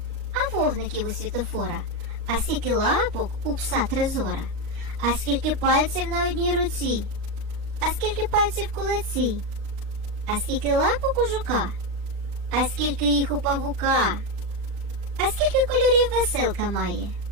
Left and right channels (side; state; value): left; late; 37 ms